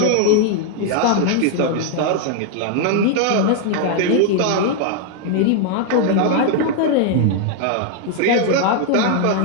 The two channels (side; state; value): both; different; correlation 0.00